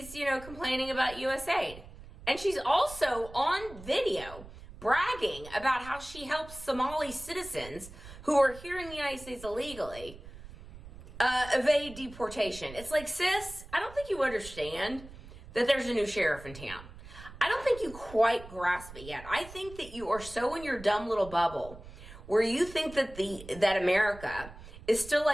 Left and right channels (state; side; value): noise; right; rumble, 16 dB below the sound